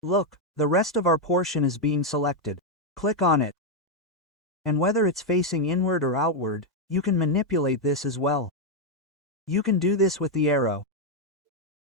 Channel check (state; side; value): normal; both; correlation 0.02